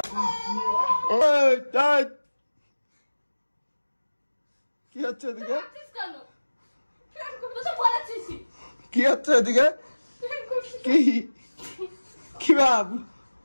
কি হচ্ছে এদিকে? মারছিস কেন? তুই তো বলেছিস। কি হচ্ছে এদিকে? কি ভাব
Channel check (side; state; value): both; inverted; correlation -1.00